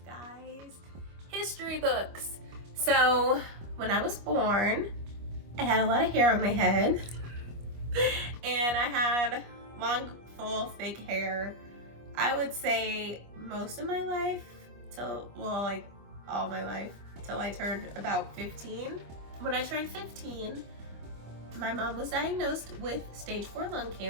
guys. History books. So when I was born, I had a lot of hair on my head and I had long, full, thick hair. I would say most of my life till, well, like all my life till I turned about 15. When I turned 15, my mom was diagnosed with stage 4 lung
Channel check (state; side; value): late; left; 25 ms